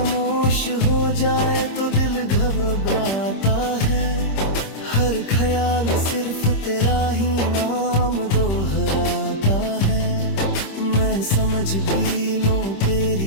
हो जाए तो दिल घबराता है, हर ख्याल सिर्फ तेरा ही नाम दोहराता है। मैं समझ भी लूं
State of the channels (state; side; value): late; right; 26 ms